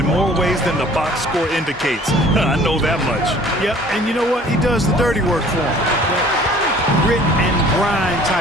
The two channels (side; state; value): both; normal; correlation 0.51